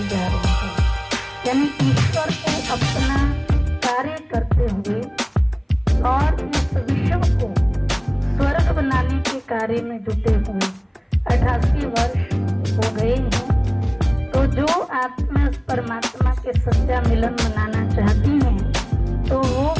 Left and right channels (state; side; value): identical; both; correlation 1.00